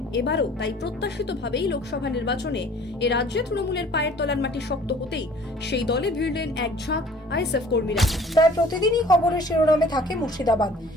এবারও তাই প্রত্যাশিতভাবেই লোকসভা নির্বাচনে এ রাজ্যে তৃণমূলের পায়ের তলার মাটি শক্ত হতেই সেই দলে ভিড়লেন এক ঝাঁক আইএসএফ কর্মীরা। প্রায় প্রতিদিনই খবরের শিরোনামে থাকে মুর্শিদাবাদ।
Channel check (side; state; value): both; normal; correlation 0.51